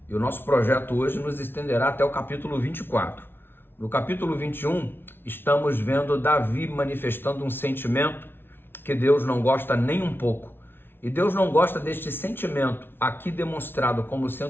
e o nosso projeto hoje nos estenderá até o capítulo 24. No capítulo 21, estamos vendo Davi manifestando um sentimento que Deus não gosta nem um pouco. E Deus não gosta deste sentimento, aqui demonstrado como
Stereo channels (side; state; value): right; late; 0.11 ms